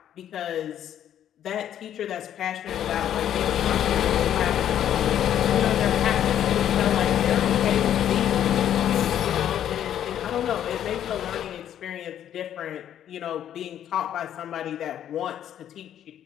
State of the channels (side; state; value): right; quieter; 10.5 dB